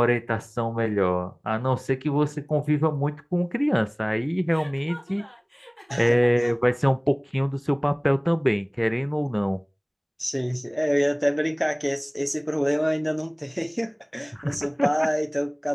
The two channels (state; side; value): identical; both; correlation 1.00